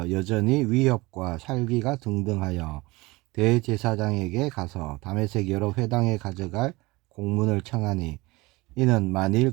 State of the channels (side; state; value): left; quieter; 22.2 dB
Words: 여전히 위협과 살기가 등등하여 대제사장에게 가서 다메섹 여러 회당에 가져갈 공문을 청하니, 이는 만일